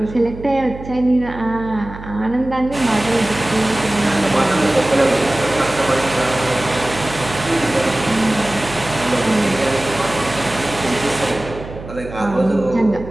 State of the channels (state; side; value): noise; right; hum, 13 dB below the sound